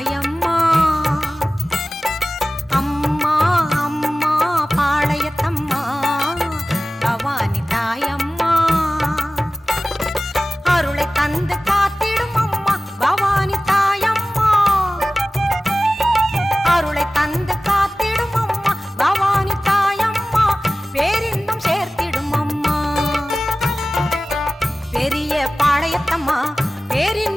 அம்மா அம்மா பாளையத்தம்மா பவானி தாயம்மா அருளை தந்து காத்திடும் அம்மா பவானி தாயம்மா அருளை தந்து காத்திடும் அம்மா பவானி தாயம்மா பேரின்பம் சேர்த்திடும் அம்மா பெரிய பாளையத்தம்மா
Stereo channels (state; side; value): normal; both; correlation 0.97